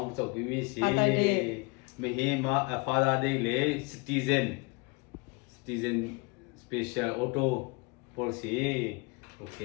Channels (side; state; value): right; quieter; 28.2 dB